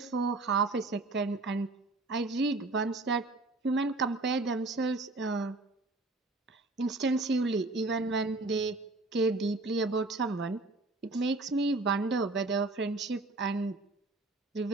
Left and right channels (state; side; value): quieter; left; 3.1 dB